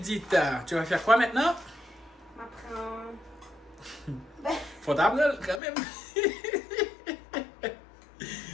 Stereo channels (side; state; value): right; drops out; at 5.6 s